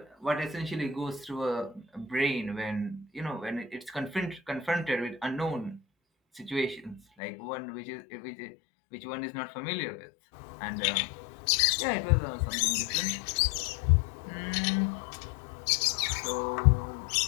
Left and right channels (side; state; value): right; drops out; at 7.0 s